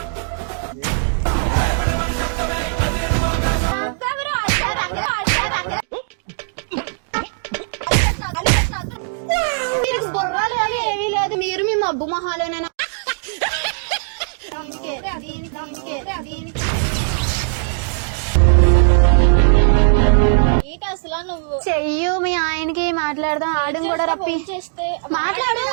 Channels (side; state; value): left; silent; digital silence